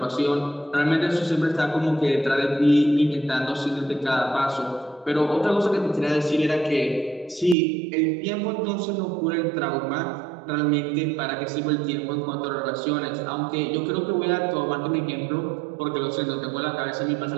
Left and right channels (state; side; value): drops out; left; at 7.6 s